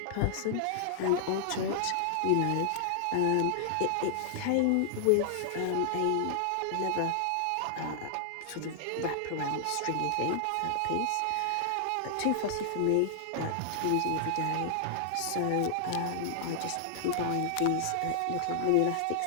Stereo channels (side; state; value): both; different; correlation -0.01